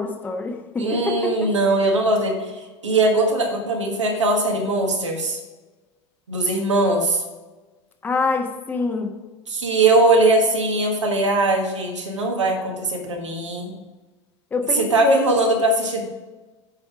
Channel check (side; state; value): both; normal; correlation 0.25